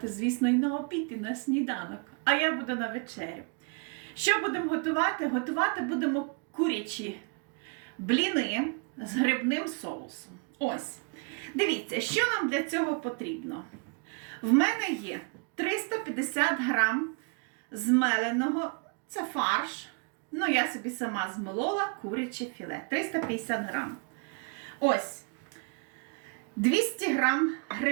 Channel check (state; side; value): quieter; left; 35.4 dB